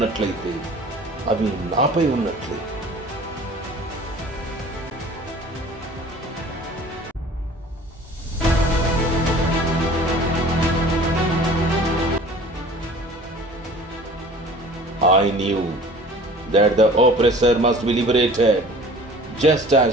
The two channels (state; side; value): normal; both; correlation 0.46